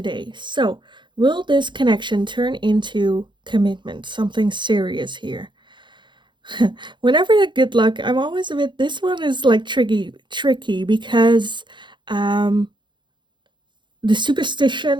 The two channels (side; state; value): left; late; 0.23 ms